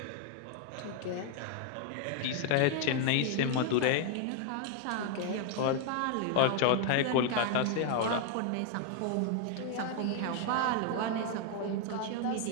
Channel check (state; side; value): different; both; correlation 0.00